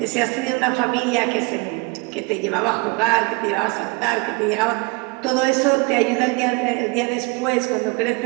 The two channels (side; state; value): left; quieter; 28.0 dB